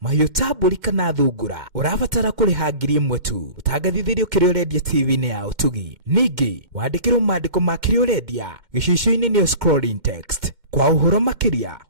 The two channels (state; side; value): late; left; 2.1 ms